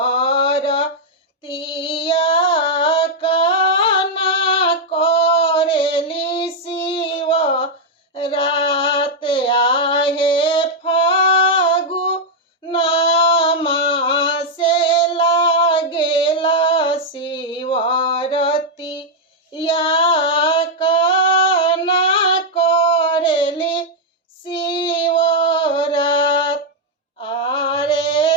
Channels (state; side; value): normal; both; correlation -0.02